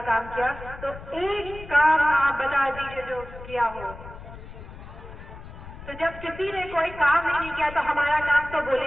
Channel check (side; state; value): left; noise; rumble, 14 dB below the sound